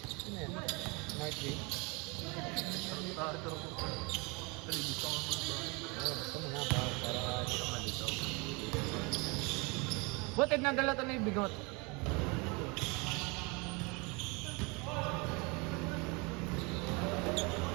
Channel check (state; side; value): quieter; left; 28.9 dB